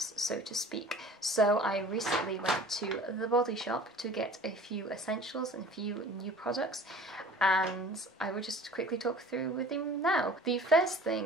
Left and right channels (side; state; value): both; normal; correlation 0.45